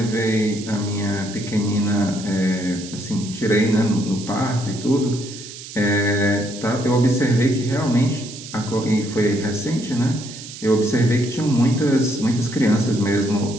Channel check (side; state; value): right; noise; hiss, 13 dB below the sound